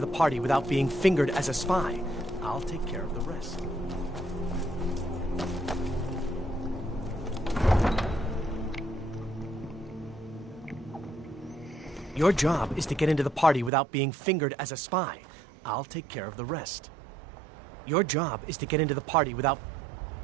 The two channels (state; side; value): drops out; left; at 13.7 s